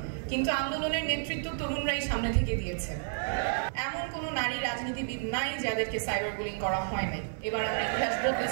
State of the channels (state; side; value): silent; left; 57 dB below the other